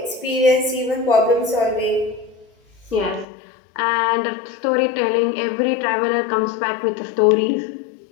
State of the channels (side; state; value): right; drops out; at 3.2 s